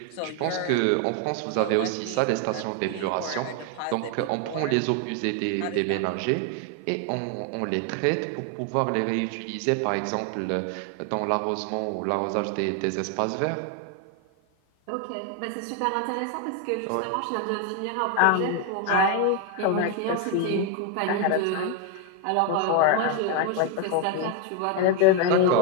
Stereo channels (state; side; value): different; both; correlation 0.01